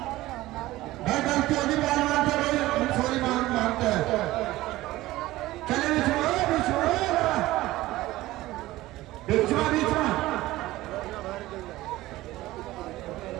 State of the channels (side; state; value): left; quieter; 17.3 dB